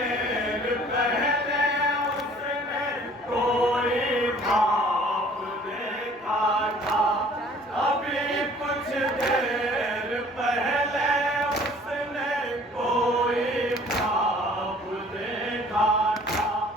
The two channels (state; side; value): normal; both; correlation 0.53